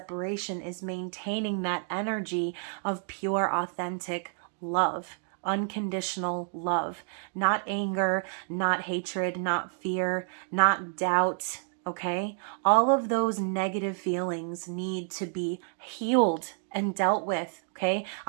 is maintaining that energy of pure, authentic love, unconditional love, not anger, not hatred, not fear, not doubt. Okay, all of those negative feelings need to be healed and dealt with. Okay,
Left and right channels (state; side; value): silent; left; 57 dB below the other